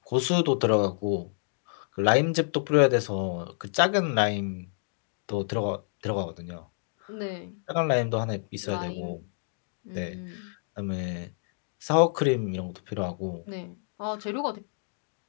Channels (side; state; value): right; silent; digital silence